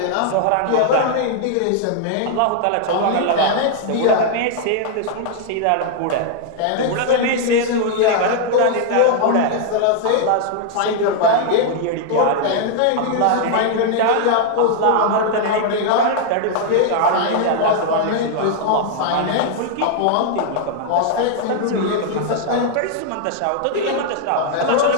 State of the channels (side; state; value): both; different; correlation 0.00